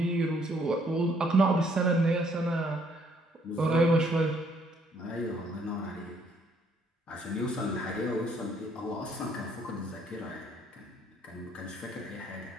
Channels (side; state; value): both; normal; correlation 0.66